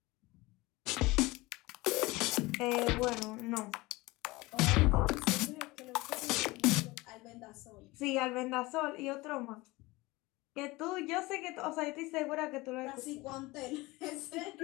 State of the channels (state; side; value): quieter; right; 21.7 dB